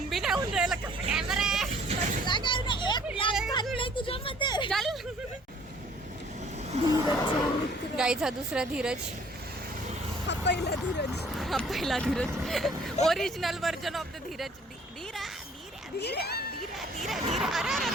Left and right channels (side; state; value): both; normal; correlation 0.56